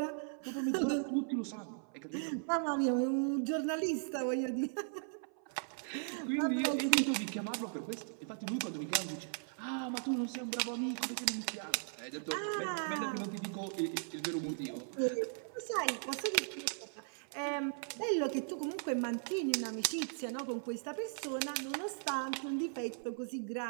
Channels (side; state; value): left; silent; 53 dB below the other